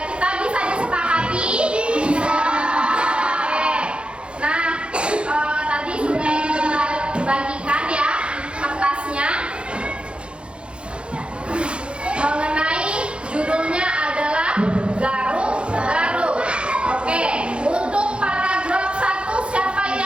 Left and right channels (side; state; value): left; late; 0.057 ms